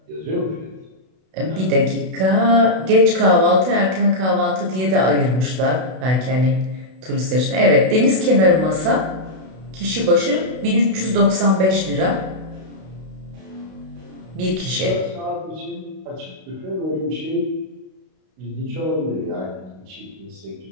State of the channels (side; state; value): left; late; 32 ms